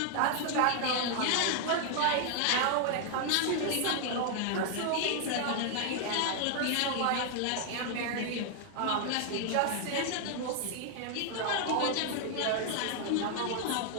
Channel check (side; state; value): both; different; correlation 0.00